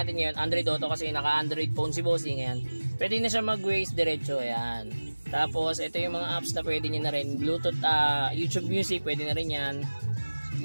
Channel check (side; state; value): both; inverted; correlation -1.00